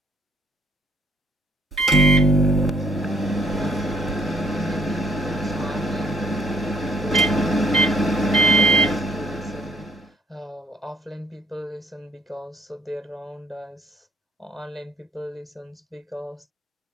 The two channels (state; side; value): normal; both; correlation 0.61